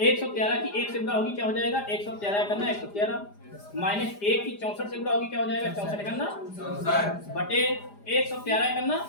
की 1 से गुणा होगी, क्या हो जाएगा? 113 करना 113 माइनस 1 की 64 से गुणा होगी, क्या हो जाएगा? 64 करना बटे 113 करना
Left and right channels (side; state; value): right; late; 4.9 ms